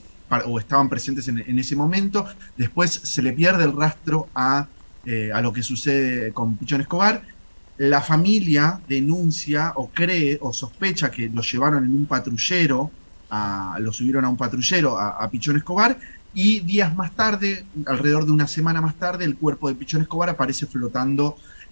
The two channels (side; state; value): both; inverted; correlation -1.00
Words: estaban presentes en ese momento. Después se le pierde el rastro a lo que sucede con Pichón Escobar. La familia denuncia o cree o sospecha que lo llevaron en un patrullero, lo subieron a un patrullero a Pichón Escobar, y días más tarde, alrededor de una semana más tarde, el cuerpo de Pichón Escobar aparece flotando